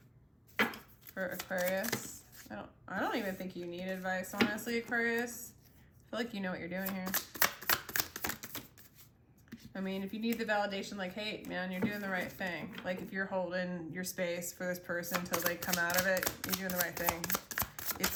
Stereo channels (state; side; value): identical; both; correlation 1.00